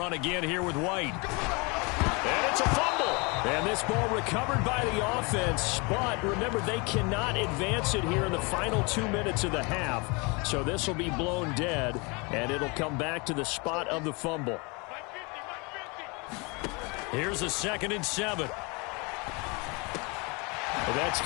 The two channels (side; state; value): right; quieter; 29.2 dB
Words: again here with White. And it's a fumble. And this ball recovered by the offense, but remember, they cannot advance it here in the final 2 minutes of the half. So this will be blown dead, and it'll come back to the spot of the fumble. Here's a 2nd and 7. Well, that's